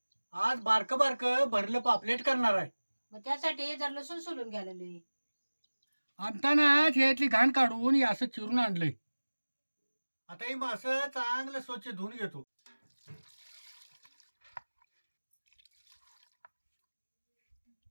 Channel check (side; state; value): both; inverted; correlation -1.00